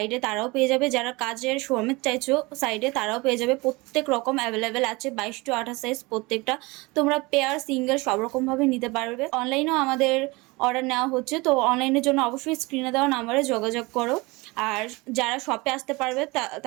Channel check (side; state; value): left; quieter; 24.2 dB